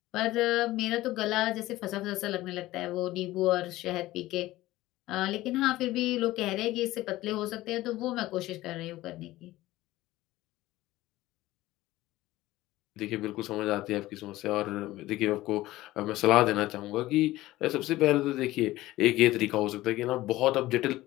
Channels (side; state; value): right; quieter; 16.9 dB